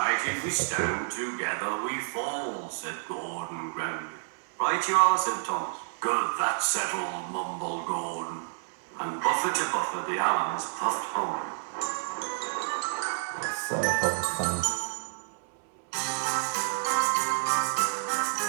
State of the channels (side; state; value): left; silent; 58 dB below the other